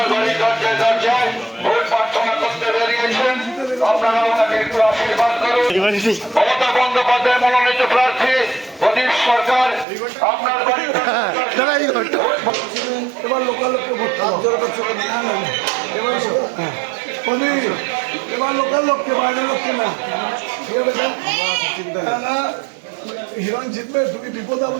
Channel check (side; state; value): left; drops out; at 9.9 s